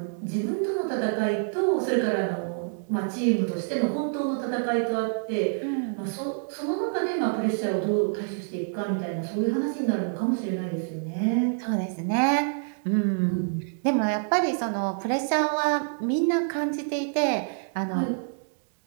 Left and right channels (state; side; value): silent; left; digital silence